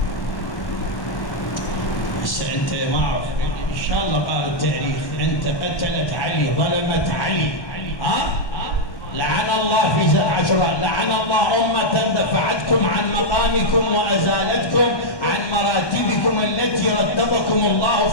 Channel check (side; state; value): right; late; 1.2 ms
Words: بس انت ما اعرف ان شاء الله قال التاريخ انت قتلت علي، ظلمت علي، ها؟ لعن الله في 10 لعن الله أمة دفعتكم عن مقامكم وأزالتكم عن مراتبكم التي رتبكم الله